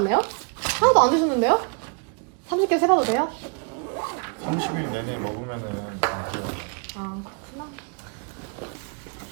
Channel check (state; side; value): quieter; left; 38.9 dB